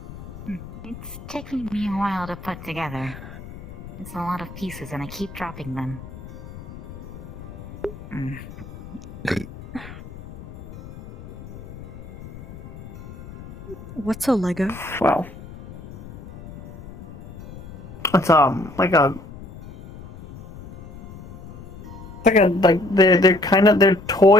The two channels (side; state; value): left; noise; rumble, 14 dB below the sound